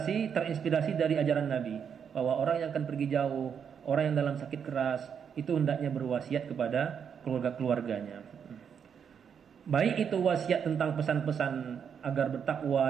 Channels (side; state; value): left; quieter; 7.4 dB